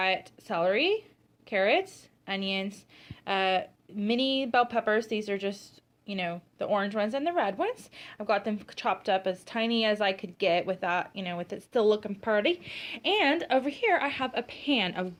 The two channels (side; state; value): both; identical; correlation 1.00